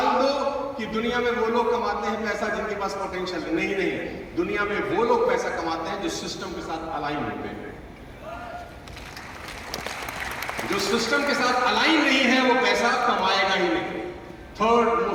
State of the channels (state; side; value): identical; both; correlation 1.00